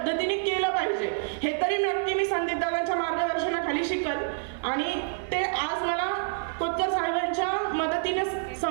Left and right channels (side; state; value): left; silent; 60 dB below the other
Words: केलं पाहिजे हे तरी नक्की मी संदीप दादांच्या मार्गदर्शनाखाली शिकल आणि ते आज मला कोतकर साहेबांच्या मदतीने